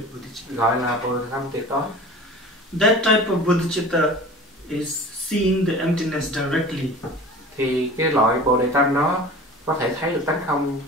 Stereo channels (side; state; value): both; normal; correlation 0.39